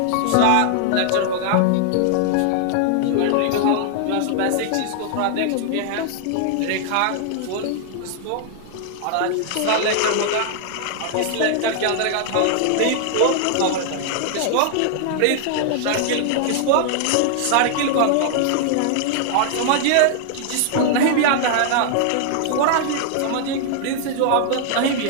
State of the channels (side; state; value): both; different; correlation -0.01